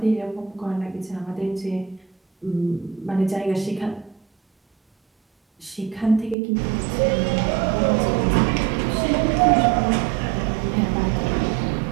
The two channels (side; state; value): left; drops out; at 6.4 s